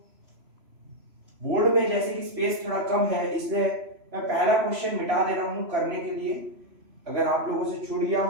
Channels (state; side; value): late; left; 3.0 ms